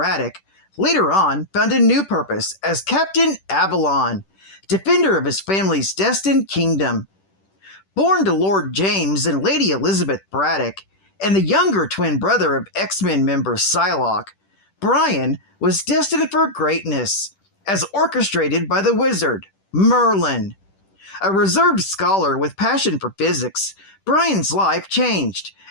later on found a new purpose as Captain Avalon, defender of his family's destined kingdom. Born to Lord James and Lady Elizabeth Braddock, and the younger twin brother of X-Men member Psylocke, Brian was destined for greatness, as orchestrated by the wizard, Merlin. A reserved scholar with passion for physics, Brian's life changed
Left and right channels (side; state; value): right; late; 10 ms